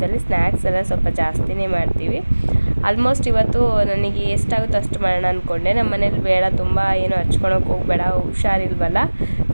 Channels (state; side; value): inverted; both; correlation -1.00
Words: ಸ್ನ್ಯಾಕ್ಸ್ ಎಲ್ಲ ಸ್ವಲ್ಪ ಜಾಸ್ತಿನೇ ಮಾಡ್ತೀವಿ. ಆಲ್ಮೋಸ್ಟ್ ಇವತ್ತು ನನಗೆ ಎಷ್ಟಾಗುತ್ತೋ ಅಷ್ಟು ಮಾಡೋಣ ಅಂದ್ಕೊಂಡೆ. ನಮ್ಮ ಮನೇಲಿ ಬೇಡ, ತುಂಬ ಏನು ಹಚ್ಕೊಳಕ್ಕೆ ಹೋಗಬೇಡ, ಹುಷಾರಿಲ್ವಲ್ಲ,